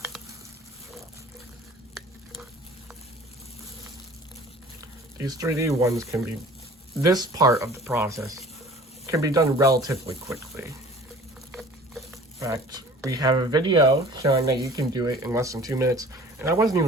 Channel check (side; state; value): both; normal; correlation 0.47